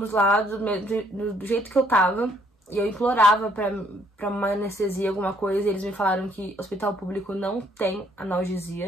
lá do jeito que eu tava. E eu implorava pra uma anestesia, alguma coisa. E eles me falaram que hospital público não tem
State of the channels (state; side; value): normal; both; correlation 0.66